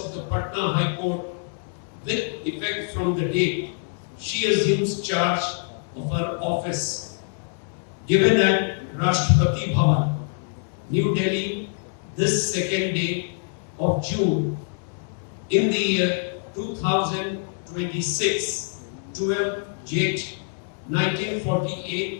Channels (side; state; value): right; silent; 62 dB below the other